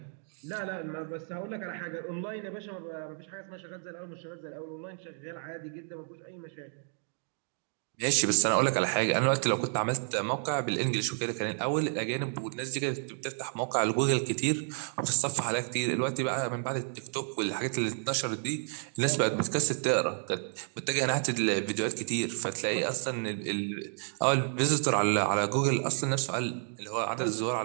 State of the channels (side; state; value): left; silent; 56 dB below the other